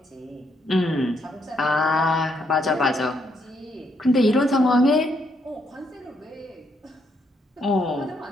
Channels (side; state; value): both; normal; correlation 0.75